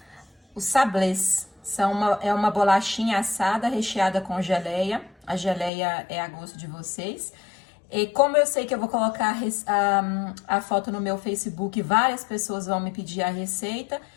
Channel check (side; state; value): right; drops out; at 5.7 s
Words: os sablés. É uma bolachinha assada recheada com geleia. A geleia é a gosto de vocês. E como eu sei que eu vou colocar a foto no meu Facebook, várias pessoas vão me pedir a receita,